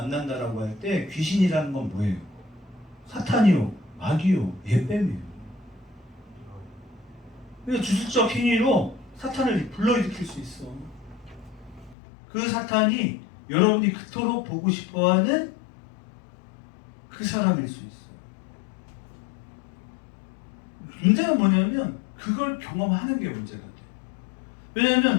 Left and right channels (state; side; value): drops out; right; at 12.0 s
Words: 할 때 귀신이라는 건 뭐예요? 사탄이요, 마귀요, 예뱀이에요. 그러니까 주술적 행위로 사탄을 불러일으킬 수 있어. 그 사탄이 여러분이 그토록 보고 싶어하는 그 사람일 수 있어. 문제가 뭐냐면 그걸 경험하는 게 문제가 돼.